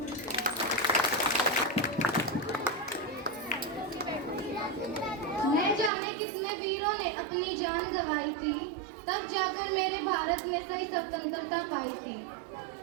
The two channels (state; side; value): drops out; left; at 5.9 s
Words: न जाने कितने वीरों ने अपनी जान गंवाई थी, तब जाकर मेरे भारत में सही स्वतंत्रता पाई थी।